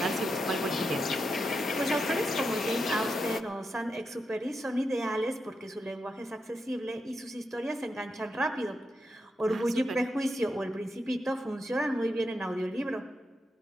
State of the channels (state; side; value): normal; both; correlation 0.86